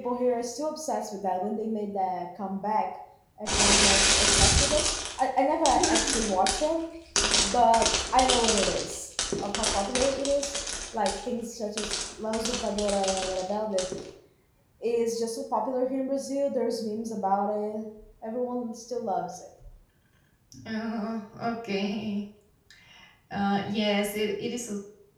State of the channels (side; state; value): both; identical; correlation 1.00